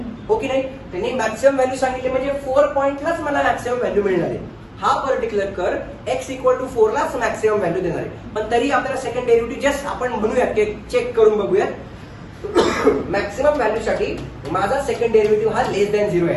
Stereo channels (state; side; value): identical; both; correlation 1.00